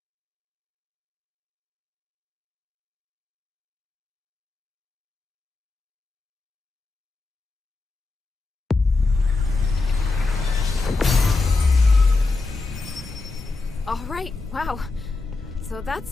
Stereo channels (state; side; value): quieter; right; 3.6 dB